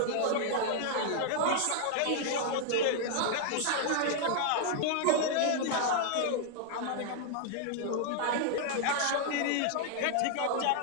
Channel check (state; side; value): different; both; correlation 0.00